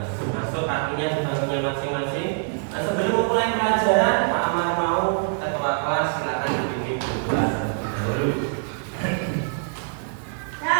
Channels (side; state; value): left; silent; 57 dB below the other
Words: Masuk kakinya di bangkunya masing-masing. Sebelum mulai pelajaran, Pak Amar mau ketua kelas silakan dibimbing pelajaran dulu.